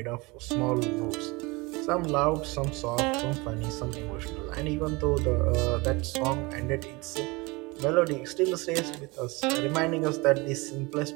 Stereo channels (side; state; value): left; quieter; 24.9 dB